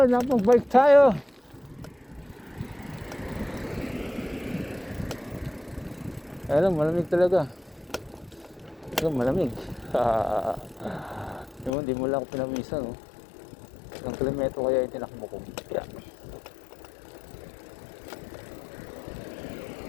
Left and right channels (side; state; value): right; drops out; at 11.7 s